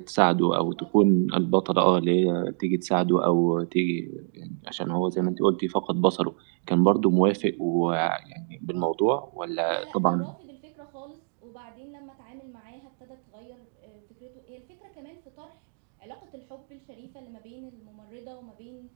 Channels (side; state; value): left; silent; digital silence